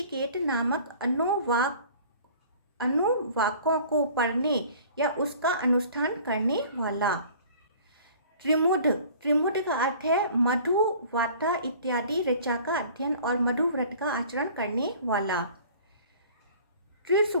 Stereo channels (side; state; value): both; inverted; correlation -0.48